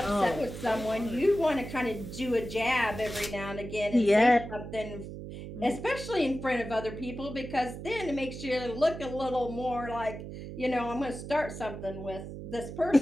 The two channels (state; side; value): noise; right; hum, 10 dB below the sound